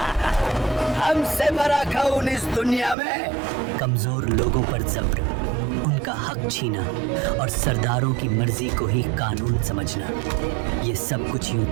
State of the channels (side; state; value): left; drops out; at 3.0 s